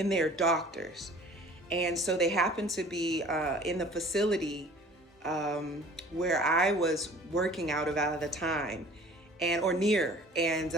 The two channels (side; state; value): both; normal; correlation 0.48